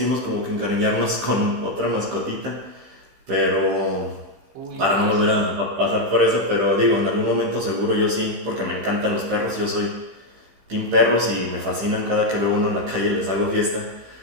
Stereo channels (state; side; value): late; left; 15 ms